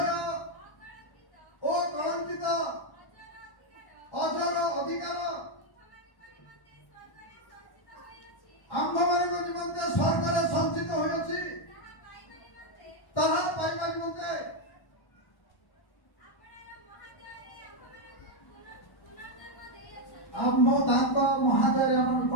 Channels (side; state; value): right; late; 1.1 ms